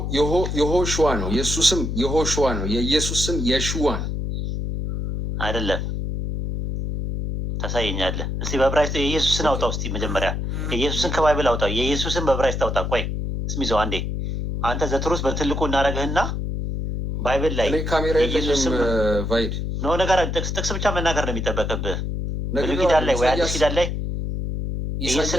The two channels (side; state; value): left; noise; hum, 3 dB below the sound